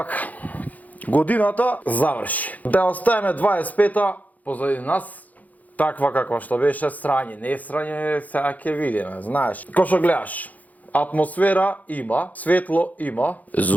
годината заврши. Да оставиме 25-та позади нас, таква каква што беше, срање, не срање, сега ќе видиме, знаеш. Ко што гледаш, атмосфера има, светло има,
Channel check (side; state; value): right; late; 0.078 ms